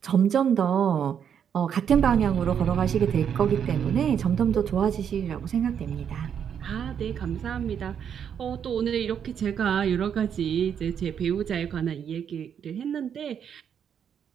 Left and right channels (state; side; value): quieter; left; 8.1 dB